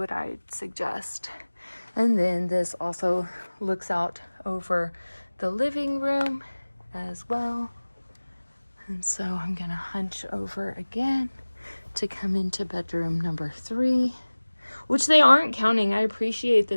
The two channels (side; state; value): both; inverted; correlation -1.00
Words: I'd suggest. And then this also looks out over the living room as well. And so I'm gonna hunch over again to come into bedroom number 3, which they aren't counting. I appreciate